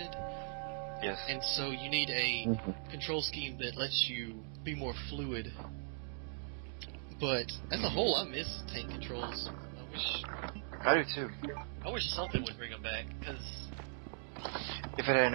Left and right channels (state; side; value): silent; left; digital silence